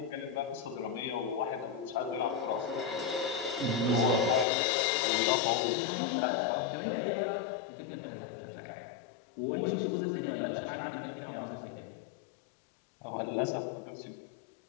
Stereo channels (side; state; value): right; drops out; at 4.5 s